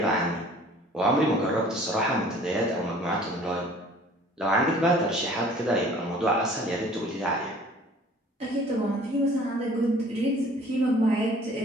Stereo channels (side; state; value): both; normal; correlation 0.51